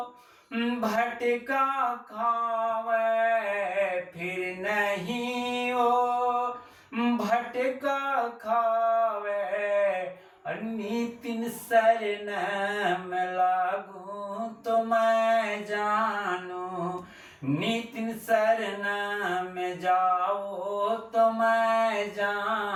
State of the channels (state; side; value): identical; both; correlation 1.00